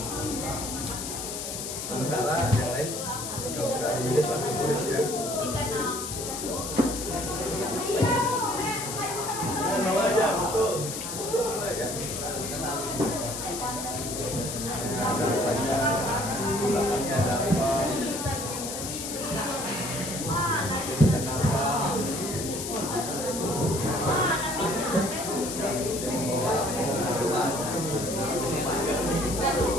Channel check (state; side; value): noise; left; hiss, 6 dB below the sound